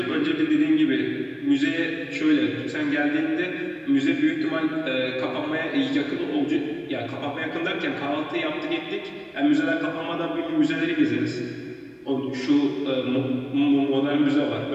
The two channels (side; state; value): both; identical; correlation 1.00